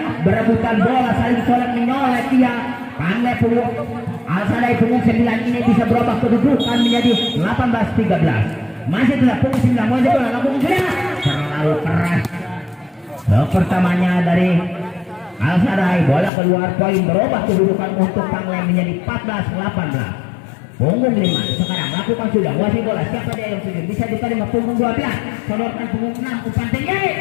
berebutan bola, saling colek menyolek dia. Pangle punggung Al-Sadai punggung 9 ini bisa berubah kedudukan menjadi 18-13. Masih tetap punggung 9. Masih bola lakukan sudah. Terlalu keras. Pertamanya dari Al-Sadai, bola keluar. Poin berubah kedudukan untuk Pangle menjadi 14-18. punggung 5. Sekarang lakukan sudah wasit bola. Siapa dia yang setuju? Bisa diterima punggung 12. Sodorkan punggung 6. Umpan tinggi.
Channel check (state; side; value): drops out; right; at 16.3 s